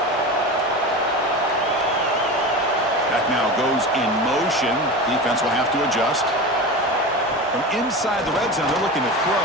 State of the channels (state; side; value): normal; both; correlation 0.27